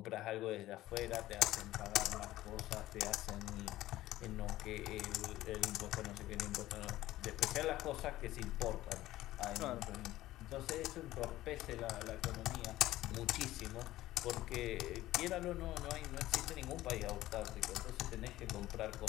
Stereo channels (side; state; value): right; quieter; 15.6 dB